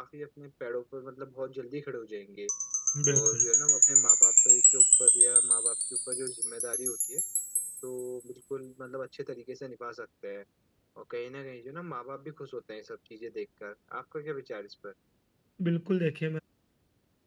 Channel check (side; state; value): both; identical; correlation 1.00